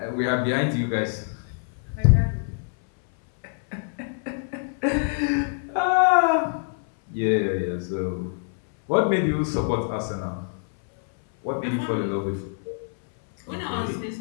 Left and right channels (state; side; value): silent; right; 60 dB below the other